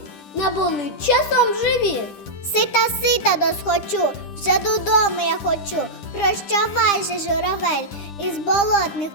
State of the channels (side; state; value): right; late; 9.8 ms